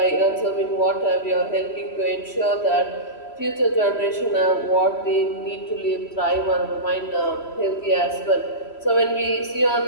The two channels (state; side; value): late; right; 3.0 ms